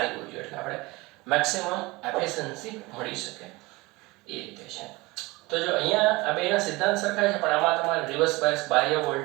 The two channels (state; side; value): quieter; left; 22.7 dB